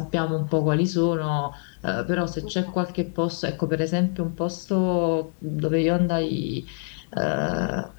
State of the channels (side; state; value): right; silent; 59 dB below the other